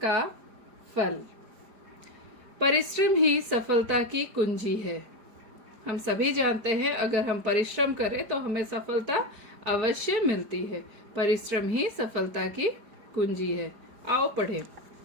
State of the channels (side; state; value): left; late; 4.9 ms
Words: का फल। परिश्रम ही सफलता की कुंजी है। हम सभी जानते हैं अगर हम परिश्रम करें तो हमें सफलता अवश्य मिलती है। परिश्रम ही सफलता की कुंजी है। आओ पढ़ें।